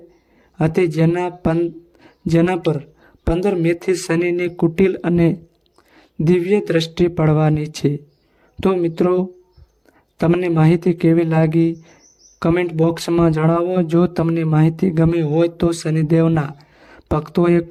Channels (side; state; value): both; identical; correlation 1.00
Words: જેના પર 15 મેથી શનિની કુટિલ અને દિવ્ય દ્રષ્ટિ પડવાની છે. તો મિત્રો તમને માહિતી કેવી લાગી કમેન્ટ બોક્સમાં જણાવો. જો તમને માહિતી ગમી હોય તો શનિદેવના ભક્તોએ